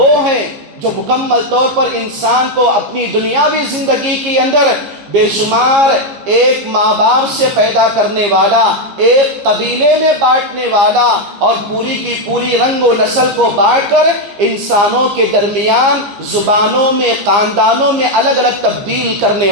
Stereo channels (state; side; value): late; left; 15 ms